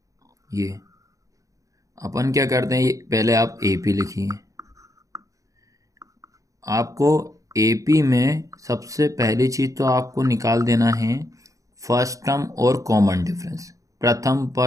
ये अपन क्या करते हैं, ये पहले आप AP लिखिए। आपको AP में सबसे पहली चीज़ तो आपको निकाल देना है फर्स्ट टर्म और कॉमन डिफरेंस, प्रथम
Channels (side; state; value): left; late; 0.16 ms